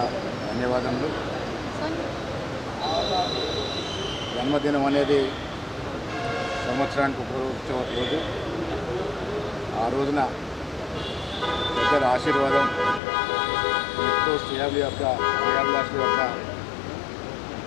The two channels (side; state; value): right; drops out; at 13.0 s